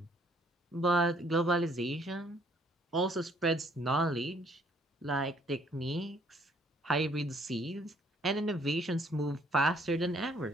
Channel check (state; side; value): normal; both; correlation 0.64